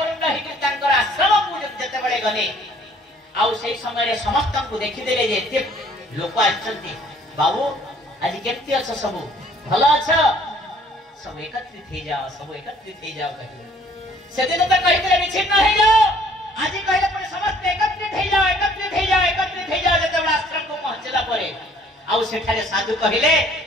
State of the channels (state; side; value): normal; both; correlation 0.58